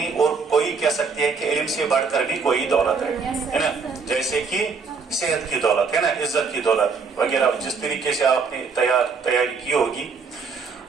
और कोई कह सकते हैं कि इल्म से बढ़कर भी कोई दौलत है ना? जैसे कि सेहत की दौलत है ना, इज्जत की दौलत वगैरह। जिस तरीके से आपने तैयारी की होगी,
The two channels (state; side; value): quieter; left; 5.0 dB